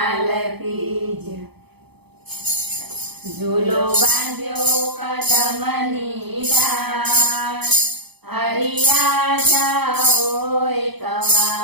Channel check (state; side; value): late; left; 0.98 ms